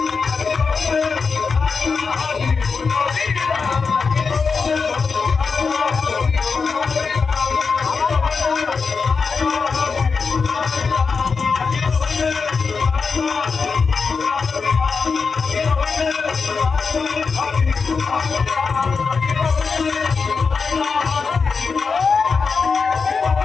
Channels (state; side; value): quieter; right; 5.0 dB